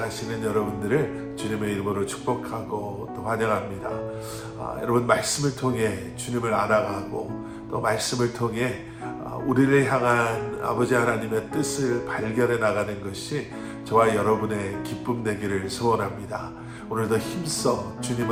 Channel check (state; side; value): identical; both; correlation 1.00